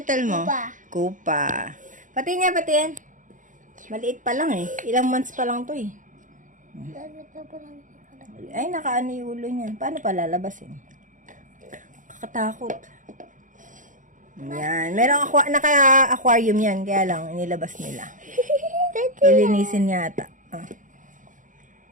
mo? Kupa. Kupa. Pati niya, pati yan. Maliit pa lang eh. Ilang months pa lang to eh. Ay, nakaano yung ulo niya. Paano pa lalabasin? Kakatakot. Yan. Merong naka-aquarium yan. Kaya lang, inilabas nila. Lilinisin yata. Ah.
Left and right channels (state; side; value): late; left; 0.37 ms